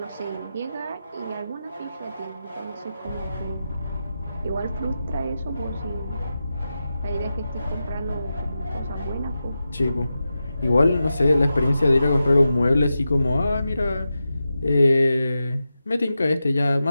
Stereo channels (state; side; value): inverted; both; correlation -0.91